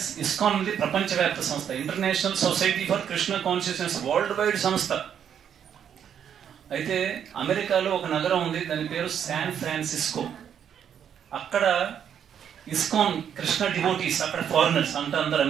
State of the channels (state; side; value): quieter; left; 8.7 dB